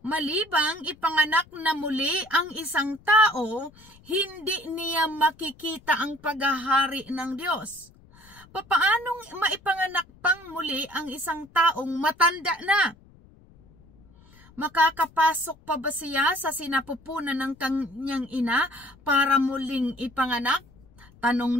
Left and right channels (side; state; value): left; noise; rumble, 26 dB below the sound